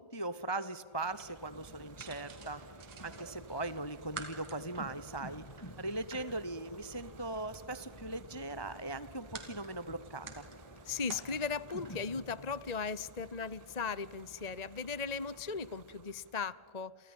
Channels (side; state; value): right; late; 1.4 ms